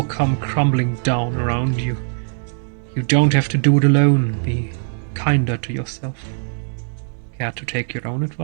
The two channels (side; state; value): left; silent; digital silence